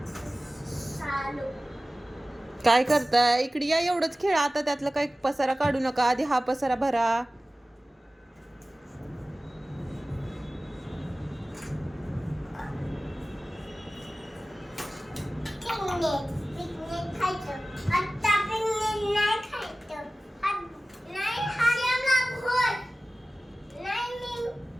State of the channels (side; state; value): both; normal; correlation 0.97